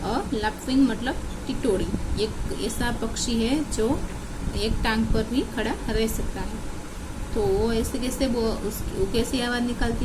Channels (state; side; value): identical; both; correlation 1.00